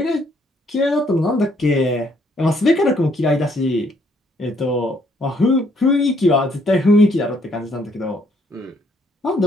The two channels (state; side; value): normal; both; correlation 0.68